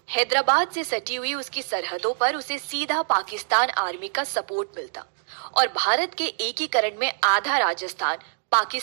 हैदराबाद से सटी हुई उसकी सरहदों पर उसे सीधा पाकिस्तान आर्मी का सपोर्ट मिलता और भारत के एकीकरण में आधा राजस्थान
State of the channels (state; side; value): silent; left; digital silence